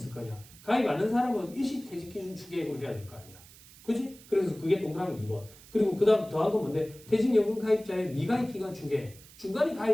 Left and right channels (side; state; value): right; noise; hiss, 21 dB below the sound